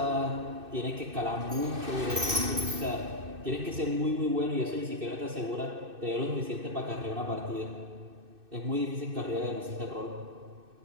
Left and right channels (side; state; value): left; late; 2.6 ms